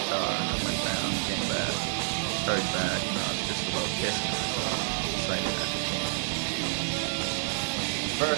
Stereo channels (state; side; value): silent; left; 59 dB below the other